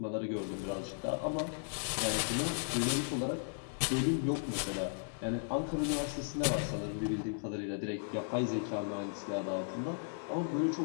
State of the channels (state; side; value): silent; right; 54 dB below the other